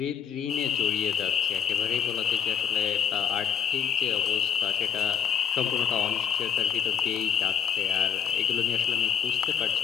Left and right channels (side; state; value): right; quieter; 8.1 dB